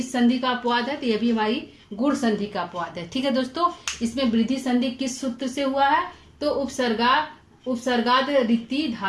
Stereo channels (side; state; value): both; identical; correlation 1.00